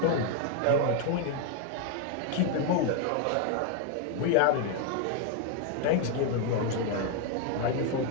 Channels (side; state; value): both; different; correlation 0.01